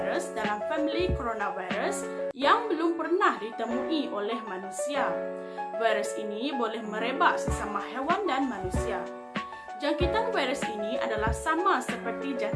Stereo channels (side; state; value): both; identical; correlation 1.00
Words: dalam family coronavirus yang belum pernah ditemui oleh manusia. Virus ini boleh merebak sesama hewan dan manusia. Jangkitan virus ini adalah sama seperti